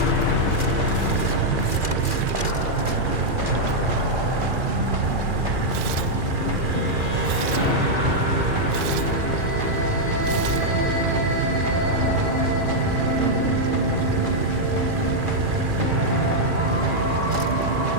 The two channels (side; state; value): left; late; 2.4 ms